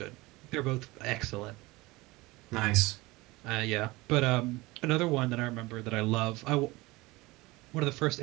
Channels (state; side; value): quieter; left; 21.7 dB